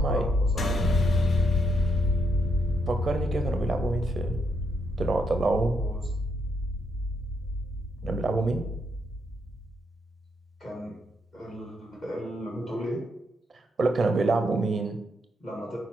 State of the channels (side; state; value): both; normal; correlation 0.77